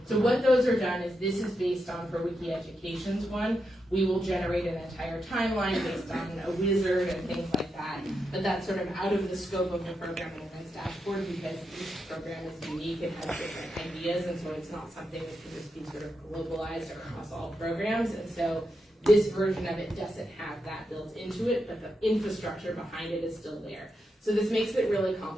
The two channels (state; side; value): normal; both; correlation 0.85